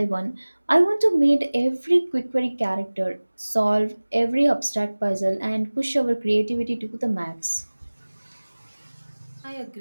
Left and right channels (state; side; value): inverted; both; correlation -1.00